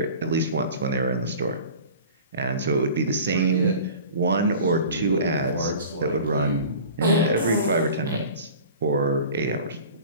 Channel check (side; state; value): both; inverted; correlation -0.41